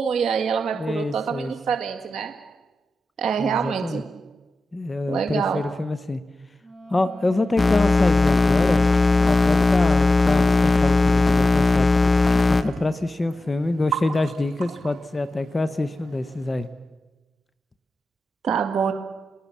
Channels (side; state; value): both; normal; correlation 0.93